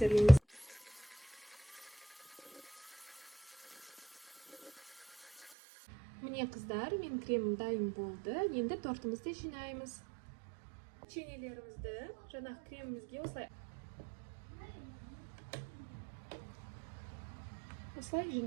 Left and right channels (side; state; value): left; drops out; at 5.5 s